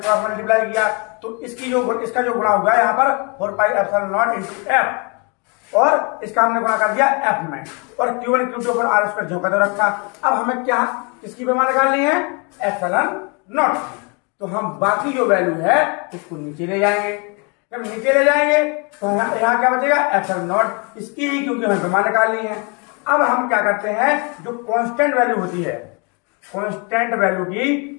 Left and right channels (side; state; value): right; quieter; 32.9 dB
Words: मल्टीप्लाई किया तो इसका जो गुणा होगा यहाँ पर 4 pi epsilon not into F और इसका हमने गुणा कर दिया F में और Q1 Q2 upon R square जो का रखा। अब हमें क्या इसकी विमा निकालनी है, एप्सिलॉन नॉट। तो हम बाकी जो वैल्यू है उसको नीचे ले जाएंगे। जब नीचे ले जाएंगे तो यहाँ क्या बचेगा, एप्सिलॉन नॉट इसकी ही, क्योंकि हमें विमा निकालनी है। अब हम क्या करते हैं, जो कांस्टेंट वैल्यू होती है, कांस्टेंट वैल्यू